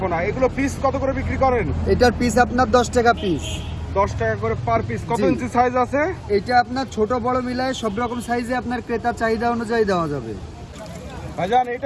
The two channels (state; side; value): identical; both; correlation 1.00